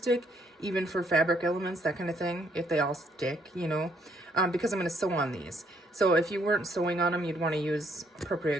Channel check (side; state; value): both; normal; correlation 0.69